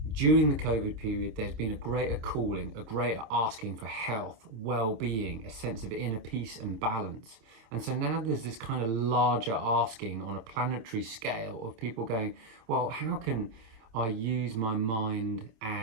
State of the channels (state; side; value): late; left; 27 ms